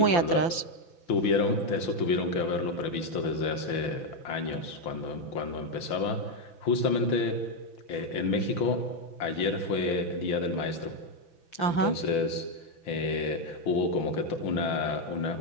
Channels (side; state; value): right; late; 6.0 ms